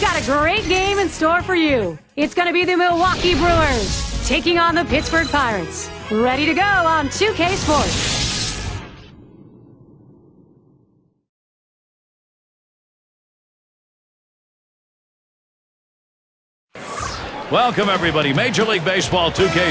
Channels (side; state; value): both; identical; correlation 1.00